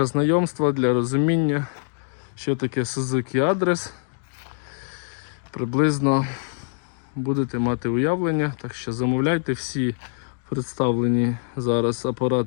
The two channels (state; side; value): silent; right; digital silence